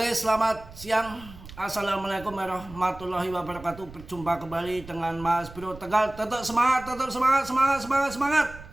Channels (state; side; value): noise; right; rumble, 17 dB below the sound